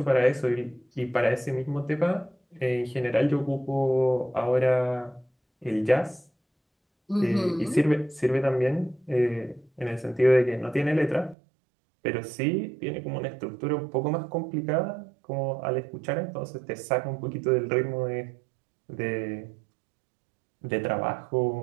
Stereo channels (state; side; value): drops out; left; at 11.4 s